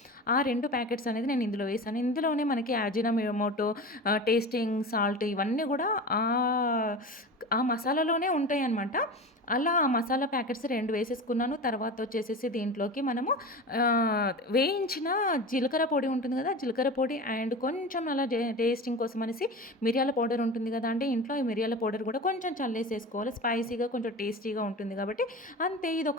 ఆ 2 ప్యాకెట్స్ అనేది నేను ఇందులో వేశాను. ఇందులోనే మనకి అజినోమోటో, టేస్టింగ్ సాల్ట్ ఇవన్నీ గూడా ఆ మసాలాలోనే ఉంటాయన్నమాట. అలా ఆ మసాలా ప్యాకెట్స్ 2 వేసేసుకున్నాను. తర్వాత వచ్చేసేసి దీంట్లోకి మనము వేయించిన జీలకర్ర పొడి ఉంటుంది గదా! జీలకర్ర పొడి అండ్ కొంచెం అలా టేస్టింగ్ కోసం అనేసి మిరియాల పౌడర్ ఉంటుంది గదా అండి ఇంట్లో. ఈ మిరియాల పౌడర్ గూడా కొంచెం చల్లేసేసుకోవాలి. స్పైసీగా కొంచెం టేస్టీగా ఉంటుంది గాబట్టి అంతే.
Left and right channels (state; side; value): normal; both; correlation 0.30